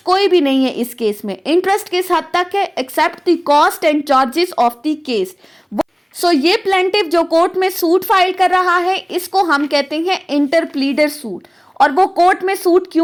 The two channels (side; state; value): both; identical; correlation 1.00